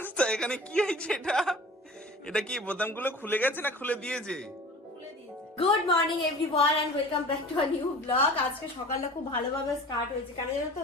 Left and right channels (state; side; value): normal; both; correlation 0.41